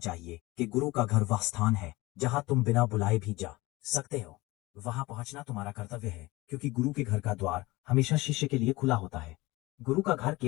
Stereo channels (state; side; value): quieter; right; 21.0 dB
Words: कि गुरु का घर वह स्थान है जहाँ तुम बिना बुलाए भी जा सकते हो। वहां पहुंचना तुम्हारा कर्तव्य है, क्योंकि गुरु के घर का द्वार हमेशा शिष्य के लिए खुला होता है। गुरु का घर